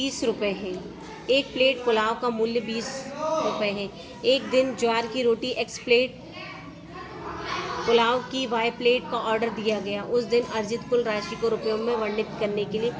रुपये है। एक प्लेट पुलाव का मूल्य 20 रुपये है। एक दिन ज्वार की रोटी x प्लेट, पुलाव की y प्लेट का ऑर्डर दिया गया। उस दिन अर्जित कुल राशि को रुपयों में वर्णित करने के लिए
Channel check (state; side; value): identical; both; correlation 1.00